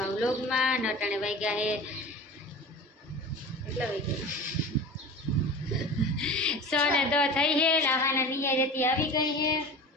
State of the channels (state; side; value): normal; both; correlation 0.34